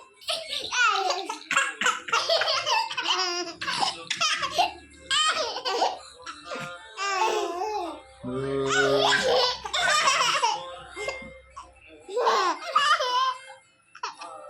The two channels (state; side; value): identical; both; correlation 1.00